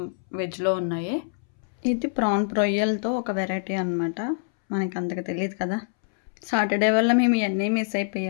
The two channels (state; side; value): silent; right; 62 dB below the other